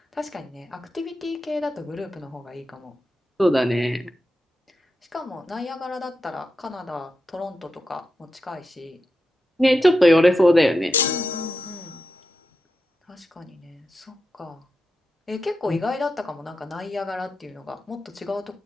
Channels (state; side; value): normal; both; correlation 0.88